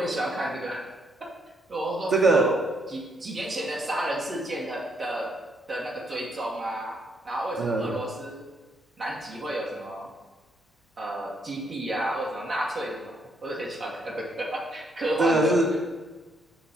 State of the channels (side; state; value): both; normal; correlation 0.74